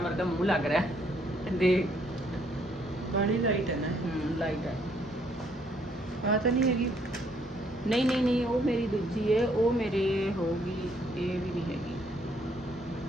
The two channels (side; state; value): both; normal; correlation 0.68